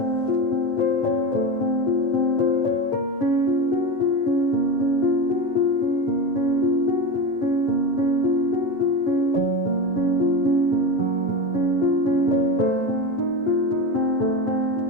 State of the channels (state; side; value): late; right; 7.6 ms